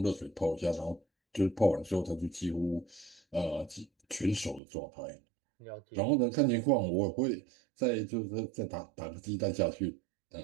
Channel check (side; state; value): left; drops out; at 4.6 s